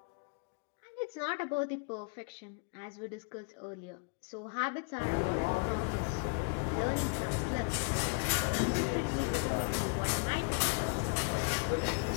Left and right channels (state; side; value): quieter; right; 33.9 dB